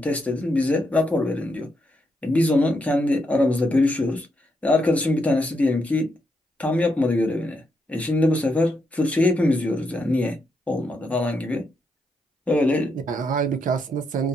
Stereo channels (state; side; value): normal; both; correlation 0.80